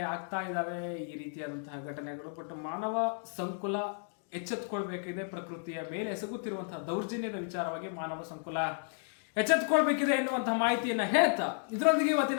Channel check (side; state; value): right; silent; 56 dB below the other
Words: ಆಗ್ತಾ ಇದ್ದಾವೆ ಈ ರೀತಿಯಾದಂತಹ ಘಟನೆಗಳು. ಬಟ್ ಮಾನವ ಸಂಕುಲ ಎಚ್ಚೆತ್ತುಕೊಳ್ಬೇಕಿದೆ. ಪ್ರಕೃತಿಯ ಮೇಲೆ ಎಸಗುತ್ತಿರುವಂತಹ ದೌರ್ಜನ್ಯದ ವಿಚಾರವಾಗಿ ಮಾನವ ಸಂಕುಲ ಎಚ್ಚೆತ್ತುಕೊಳ್ಬೇಕಿದೆ ಎನ್ನುವಂತಹ ಮಾಹಿತಿಯನ್ನ ಹೇಳ್ತಾ ಇದರೊಂದಿಗೆ